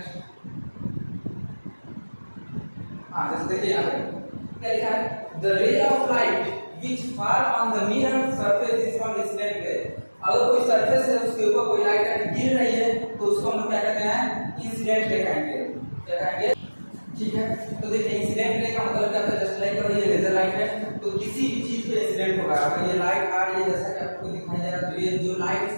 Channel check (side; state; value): both; inverted; correlation -1.00